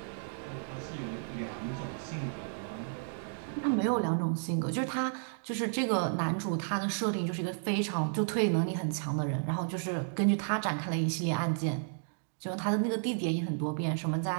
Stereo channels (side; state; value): left; silent; digital silence